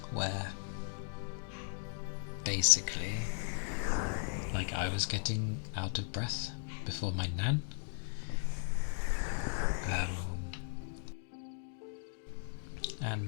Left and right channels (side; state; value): right; silent; digital silence